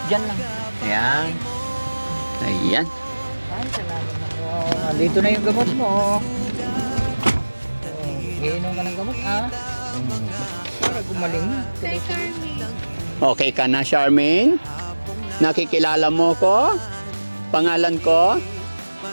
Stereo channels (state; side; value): inverted; both; correlation -1.00